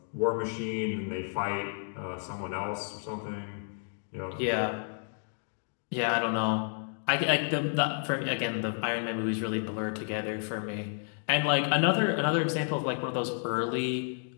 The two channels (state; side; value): silent; right; digital silence